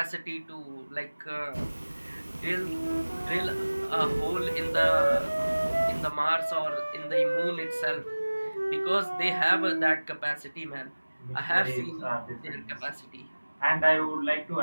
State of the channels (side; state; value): both; inverted; correlation -1.00